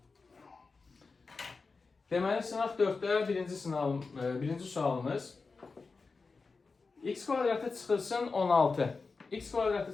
Deməli sınaq 4-də birinci sualımız x kvadratı çıxılsın 16. X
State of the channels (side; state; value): right; quieter; 4.3 dB